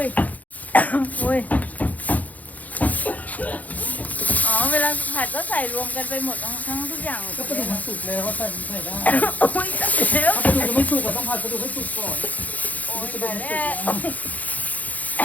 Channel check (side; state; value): right; late; 0.077 ms